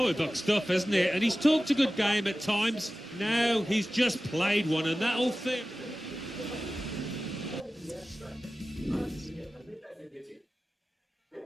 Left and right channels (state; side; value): normal; both; correlation 0.95